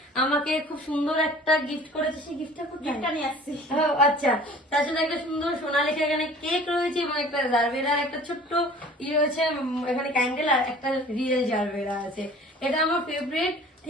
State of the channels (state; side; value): normal; both; correlation 0.47